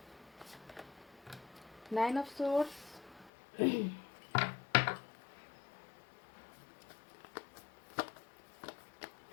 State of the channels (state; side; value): drops out; right; at 3.3 s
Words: 9 ऑफ सोर्ड्स,